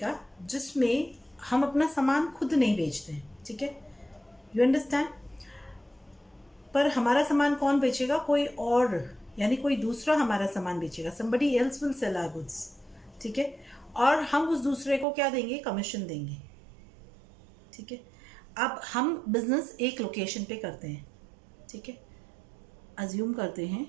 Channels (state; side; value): drops out; left; at 15.1 s